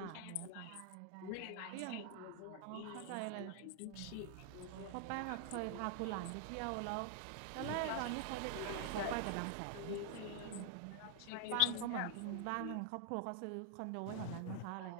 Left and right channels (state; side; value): different; both; correlation 0.00